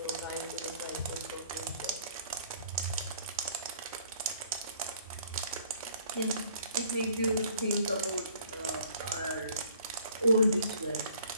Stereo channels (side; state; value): both; inverted; correlation -0.57